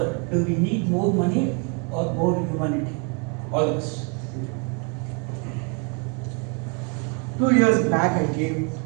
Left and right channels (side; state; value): left; quieter; 35.4 dB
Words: do we need more money or more humanity? All of us. 2 years back, I gave